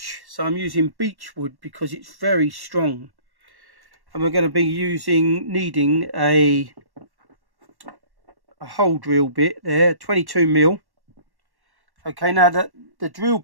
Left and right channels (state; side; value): late; left; 1.1 ms